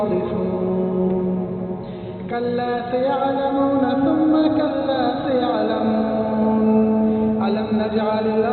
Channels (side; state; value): both; identical; correlation 1.00